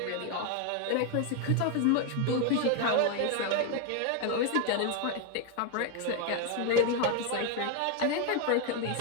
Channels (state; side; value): different; both; correlation 0.01